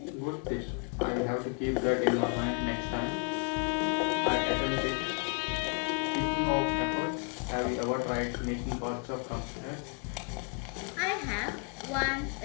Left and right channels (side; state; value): right; quieter; 35.9 dB